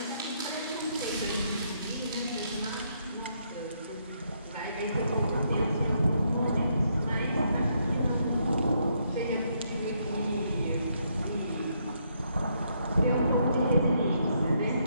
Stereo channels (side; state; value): both; inverted; correlation -0.75